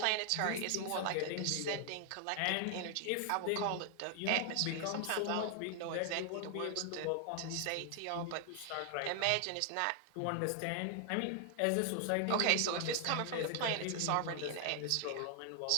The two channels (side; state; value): both; different; correlation 0.00